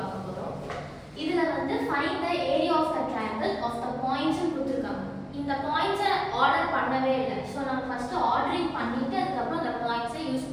போறோம். இதுல வந்து find the area of the triangle of the points கொடுத்திருக்காங்க. இந்த பாயிண்ட்ஸை ஆர்டர் பண்ணவே இல்லை. ஸோ நம்ம ஃபர்ஸ்ட் ஆர்டரிங் பண்ணிட்டு அதுக்கப்புறம் அந்த பாயிண்ட்ஸை யூஸ்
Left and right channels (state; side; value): identical; both; correlation 1.00